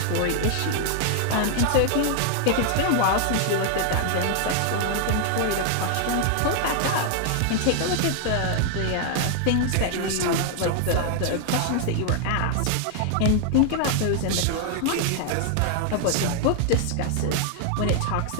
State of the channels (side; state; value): both; different; correlation 0.00